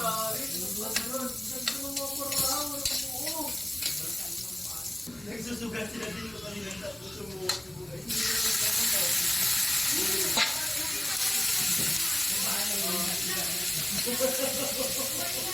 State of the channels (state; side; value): noise; right; hum, 29 dB below the sound